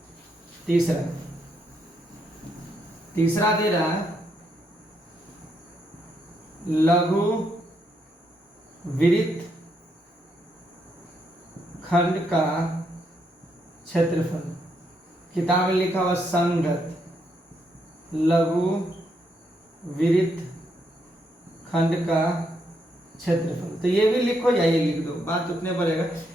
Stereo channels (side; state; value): both; normal; correlation 0.77